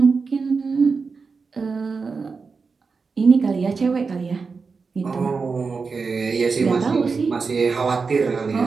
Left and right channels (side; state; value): left; quieter; 4.8 dB